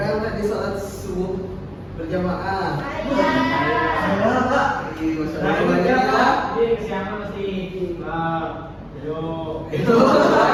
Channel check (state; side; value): identical; both; correlation 1.00